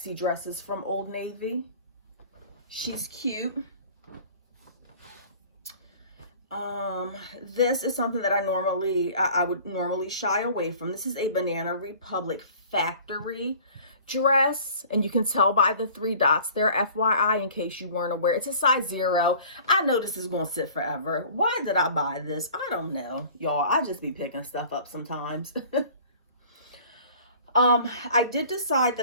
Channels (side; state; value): both; inverted; correlation -0.47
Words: dresses from Old Navy. She's cute. This is something that I would normally shy away from. This is a Banana Republic factory dress, and you can tell by the 3 dots there, FYI, in case you weren't aware. It's a size 0. I know this is going to sit forever. Why did I buy this? I don't know, y'all. I just be picking stuff up sometimes. I did decide